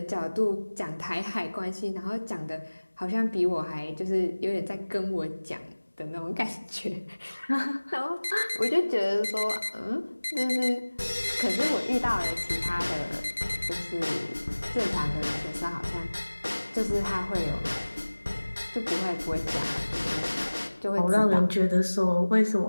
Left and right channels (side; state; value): both; inverted; correlation -1.00